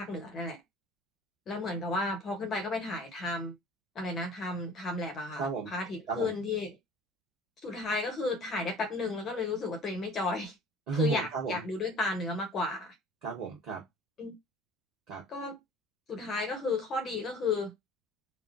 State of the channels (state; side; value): normal; both; correlation 0.46